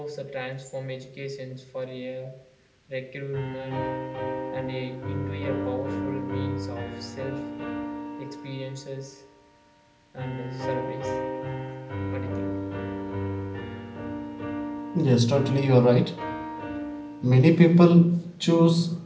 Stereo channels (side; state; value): both; identical; correlation 1.00